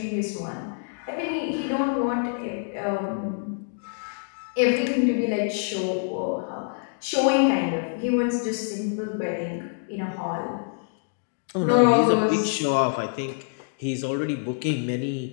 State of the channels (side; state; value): right; silent; digital silence